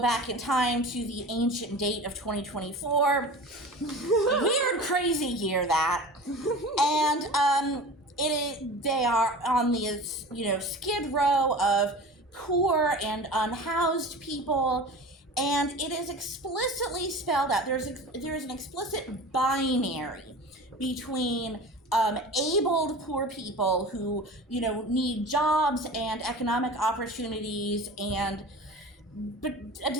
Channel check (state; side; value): normal; both; correlation 0.36